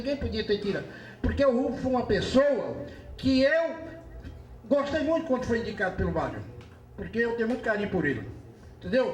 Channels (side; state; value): both; identical; correlation 1.00